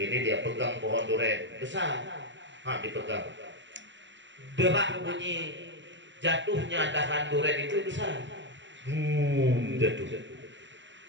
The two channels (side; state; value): left; late; 0.54 ms